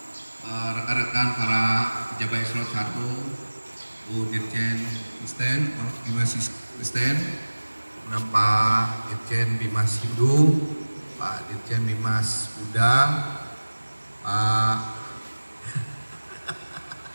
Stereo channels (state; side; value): inverted; both; correlation -1.00